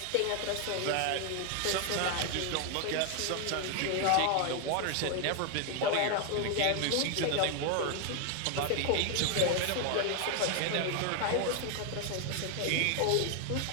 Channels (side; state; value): both; different; correlation 0.01